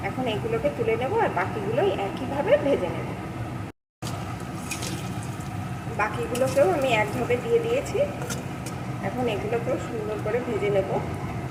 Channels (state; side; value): identical; both; correlation 1.00